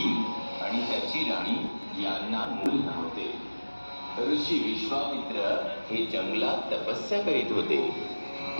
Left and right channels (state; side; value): inverted; both; correlation -1.00